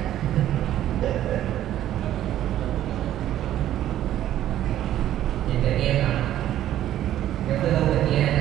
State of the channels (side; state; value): left; quieter; 12.3 dB